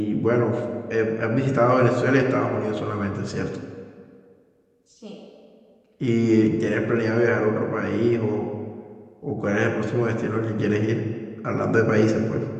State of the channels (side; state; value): both; identical; correlation 1.00